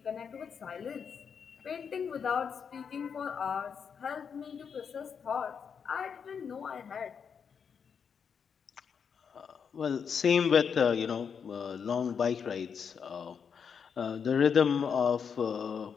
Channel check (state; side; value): quieter; right; 6.7 dB